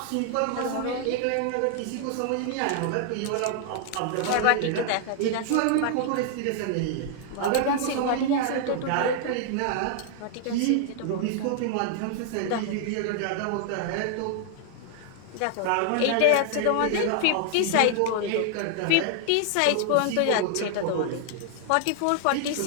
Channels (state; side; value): different; both; correlation 0.00